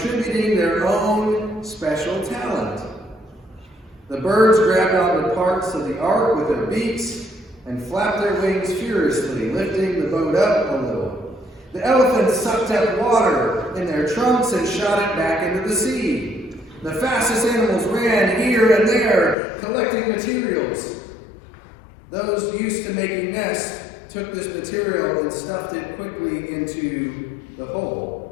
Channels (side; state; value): right; drops out; at 19.4 s